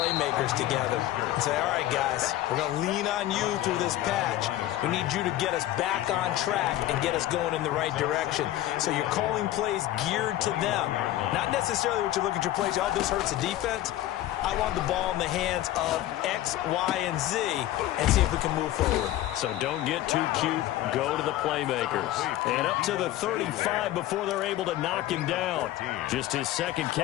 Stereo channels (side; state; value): right; quieter; 14.4 dB